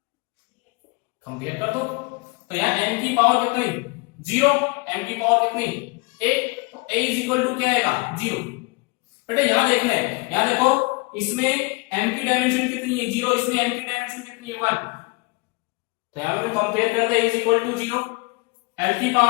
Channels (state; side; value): quieter; right; 27.2 dB